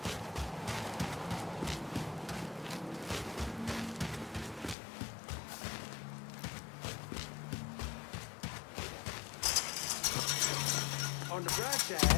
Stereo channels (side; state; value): right; drops out; at 4.8 s